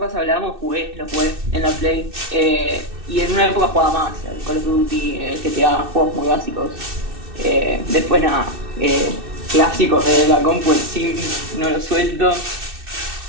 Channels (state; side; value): late; left; 2.6 ms